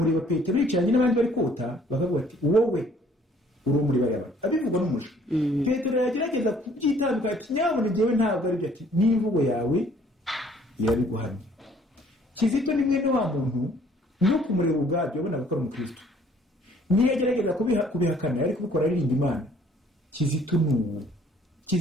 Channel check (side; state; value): both; normal; correlation 0.59